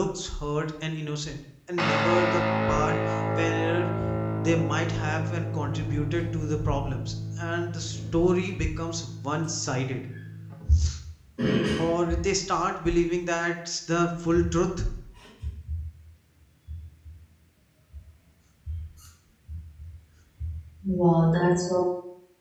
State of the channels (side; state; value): both; identical; correlation 1.00